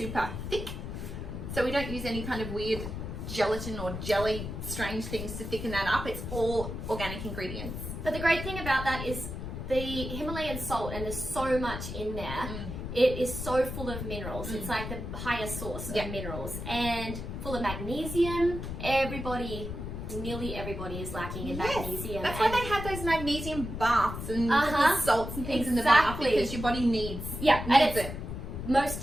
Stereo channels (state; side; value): noise; left; rumble, 6 dB below the sound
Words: thick. So we don't use any kind of weird gelatin or jelly strange things to thicken that up. It's all organic ingredients. But the great thing about that is the Himalayan salt, and there's so much in there. It is so full of minerals. It's like the highest source of minerals, and full of magnesium. Nearly everybody is lacking in magnesium. That's why they have those magnesium baths and the salts and things in the bath, because your body needs it.